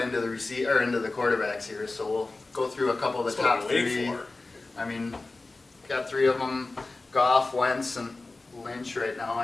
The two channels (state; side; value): quieter; right; 3.3 dB